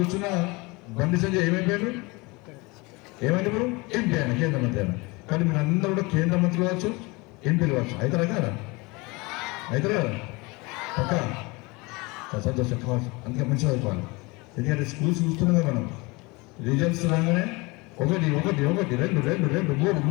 బండి సంజయ్ ఏమైపోయాడు, ఏమైంది ఇప్పుడు ఎంపీ ఆయన, కేంద్ర మంత్రి ఆయన. కానీ మీరు అందరూ కూడా కేంద్ర మంత్రులు కావచ్చు, ఎంపీలు కావచ్చు. అవుతారా కదా, అవుతారా పక్క సంతోషం కావచ్చు. అందుకే మంచిగా అయిపోవాలి. ఎందుకంటే స్కూల్స్ చూస్తున్నాం మనం, రిజల్ట్స్ రాగానే ఒకటి ఒకటి ఒకటి రెండు రెండు రెండు మూడు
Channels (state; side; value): quieter; right; 25.3 dB